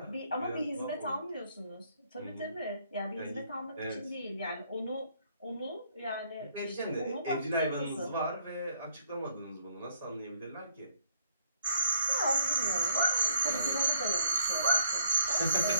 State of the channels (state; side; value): inverted; both; correlation -0.66